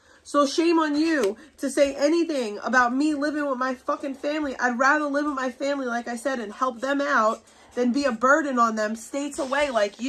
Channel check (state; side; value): identical; both; correlation 1.00